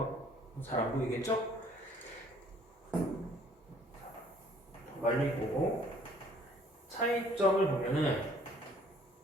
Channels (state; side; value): normal; both; correlation 0.58